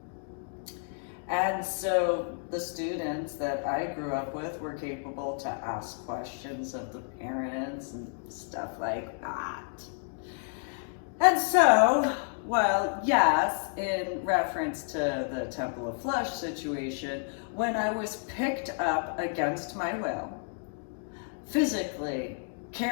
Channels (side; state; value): right; silent; 57 dB below the other